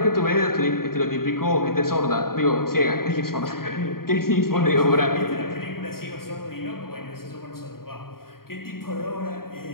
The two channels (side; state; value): right; late; 0.93 ms